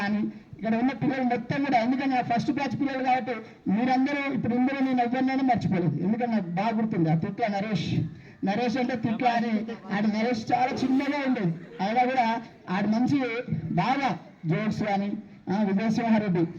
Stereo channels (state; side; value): identical; both; correlation 1.00